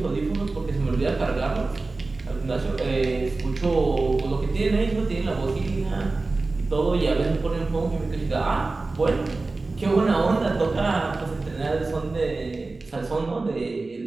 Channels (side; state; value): left; quieter; 3.5 dB